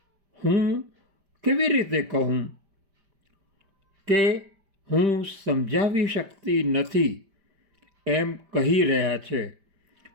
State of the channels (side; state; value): left; late; 5.1 ms